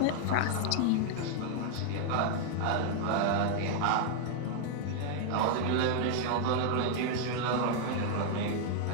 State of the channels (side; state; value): both; different; correlation 0.00